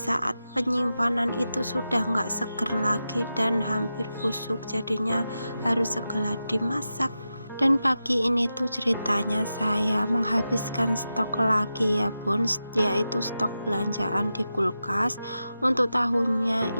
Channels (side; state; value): both; inverted; correlation -0.91